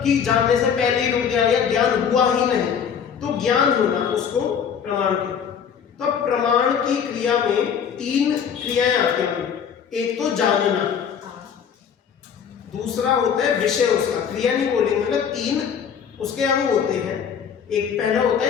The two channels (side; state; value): right; quieter; 7.5 dB